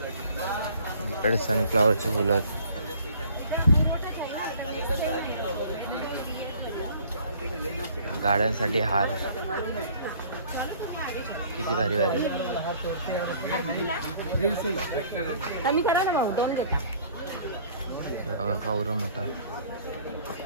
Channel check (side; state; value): both; inverted; correlation -0.54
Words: इकडे सनफ्लावरची फुलं आहेत. गाड्यांसाठी हार किती भारी भारी. कमी करा ना भाऊ, 2 घेता. कावरं मोठा.